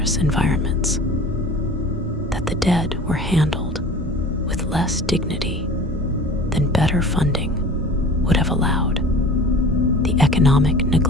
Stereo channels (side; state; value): both; normal; correlation 0.41